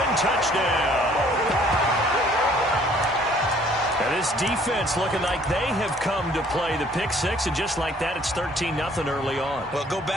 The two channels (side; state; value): both; normal; correlation 0.59